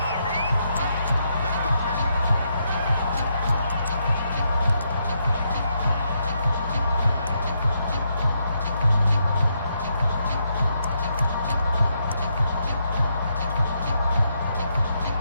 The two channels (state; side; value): inverted; both; correlation -0.79